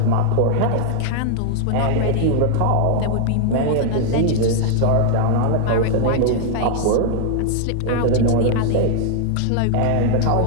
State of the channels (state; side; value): different; both; correlation 0.00